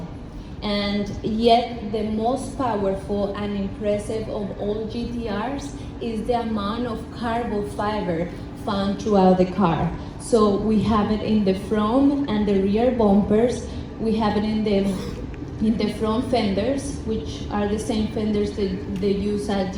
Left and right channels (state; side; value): identical; both; correlation 1.00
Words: and yet the most powerful and impressive of all GTRs is the amount of carbon fiber found throughout the car. So we have it in the front and the rear bumpers. We have it in the front fenders, which are the same fenders that they use at